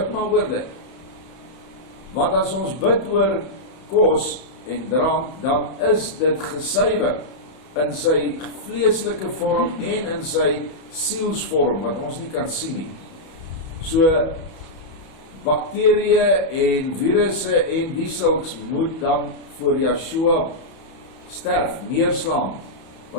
maar oor dit. Want as ons bid oor kos en drank, dan is dit gesuiwer in sy vleeslike vorm en in sy sielsvorm, wat ons nie kan sien nie. So, bakterieë en virusse en die sulks moet dan voor Yeshua sterf, neerslaan,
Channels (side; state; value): right; late; 31 ms